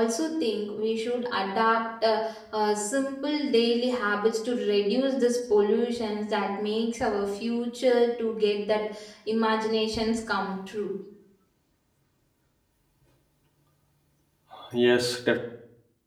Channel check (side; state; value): both; identical; correlation 1.00